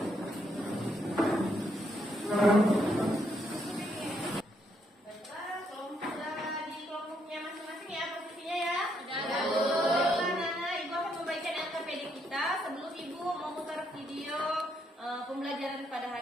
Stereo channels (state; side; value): normal; both; correlation 0.74